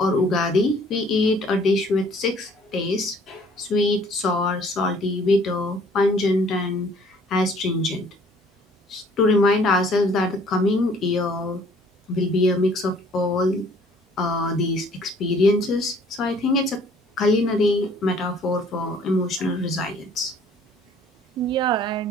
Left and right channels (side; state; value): both; normal; correlation 0.57